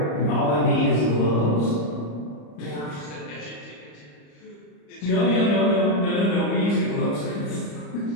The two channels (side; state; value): right; late; 34 ms